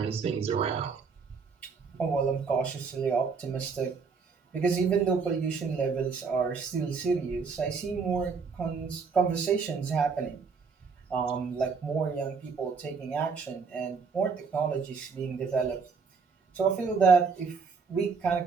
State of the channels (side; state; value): left; quieter; 5.3 dB